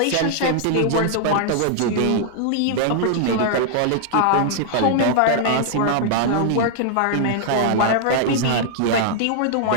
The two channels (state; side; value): different; both; correlation -0.01